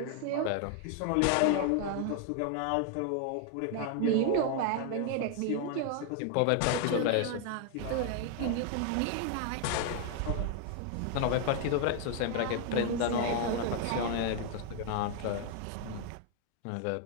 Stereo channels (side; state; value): both; different; correlation 0.00